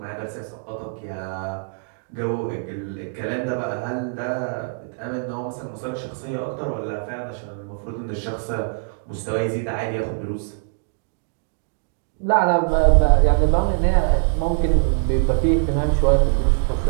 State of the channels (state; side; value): silent; left; digital silence